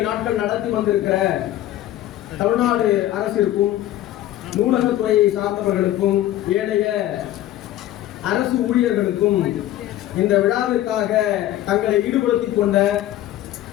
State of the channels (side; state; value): right; quieter; 13.6 dB